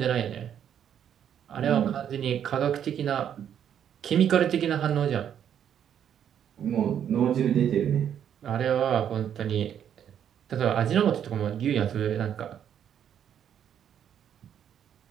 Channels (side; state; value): left; quieter; 9.2 dB